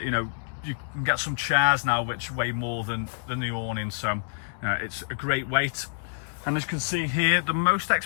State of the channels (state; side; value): silent; right; 60 dB below the other